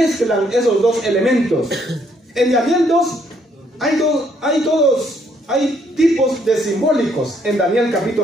esos dos elementos, en Daniel 2 hay tipos de simbólicos en Daniel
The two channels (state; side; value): normal; both; correlation 0.69